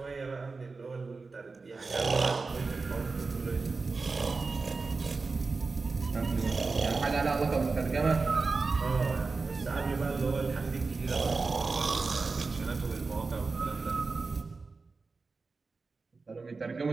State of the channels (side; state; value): left; quieter; 4.1 dB